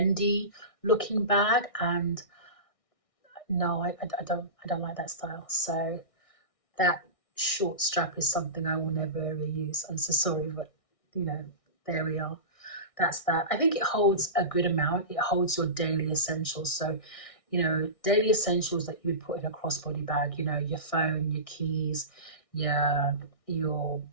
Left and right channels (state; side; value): late; right; 1.6 ms